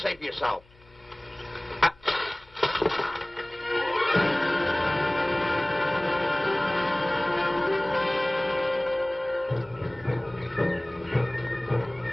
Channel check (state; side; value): noise; left; hum, 29 dB below the sound